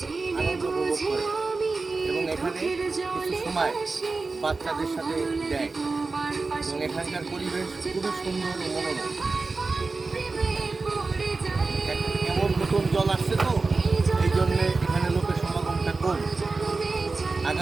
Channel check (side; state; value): left; quieter; 3.9 dB